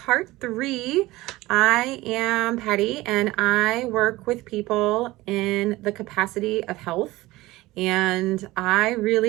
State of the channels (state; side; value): quieter; left; 18.9 dB